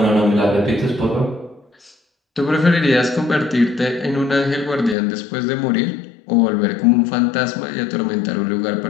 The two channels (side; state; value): right; drops out; at 5.0 s